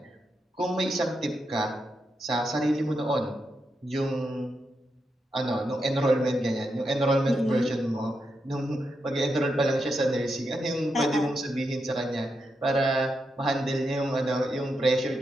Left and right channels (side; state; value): both; normal; correlation 0.85